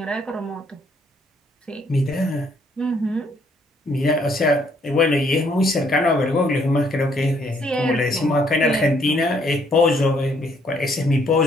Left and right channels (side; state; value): both; normal; correlation 0.67